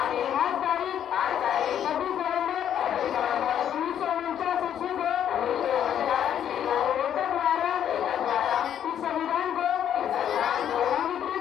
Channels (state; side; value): quieter; right; 9.8 dB